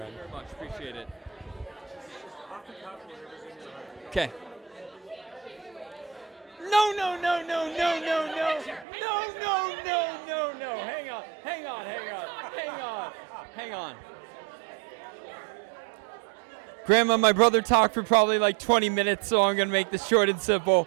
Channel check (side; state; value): left; drops out; at 8.8 s